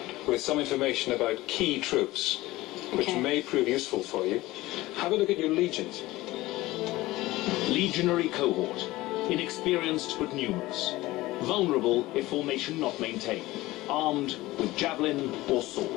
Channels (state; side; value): quieter; right; 18.4 dB